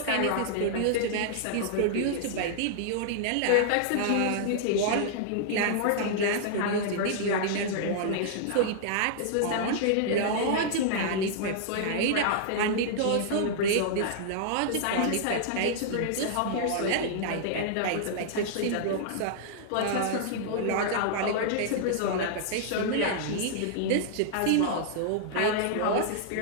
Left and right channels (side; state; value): both; different; correlation -0.01